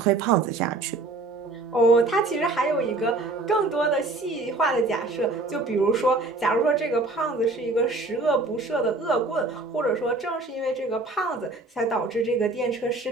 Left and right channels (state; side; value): quieter; left; 3.2 dB